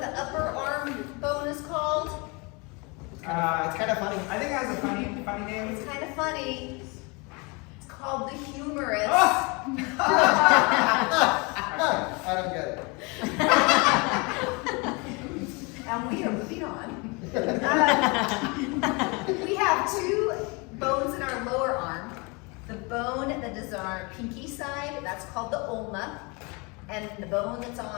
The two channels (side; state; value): right; quieter; 29.1 dB